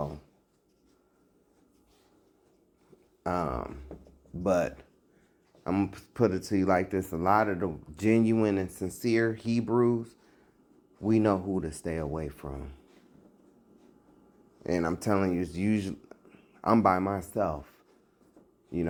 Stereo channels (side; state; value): both; identical; correlation 1.00